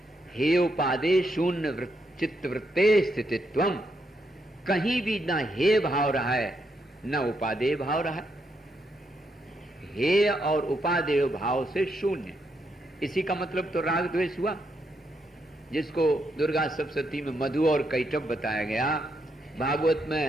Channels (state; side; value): normal; both; correlation 0.79